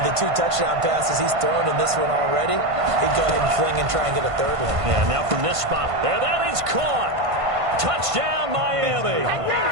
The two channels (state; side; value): late; left; 1.5 ms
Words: with the 2 touchdown passes he's thrown in this one already, he'd go ahead and fling and try and get a 3rd one. Yeah, now from this spot, there, that is caught. Touchdown, Miami.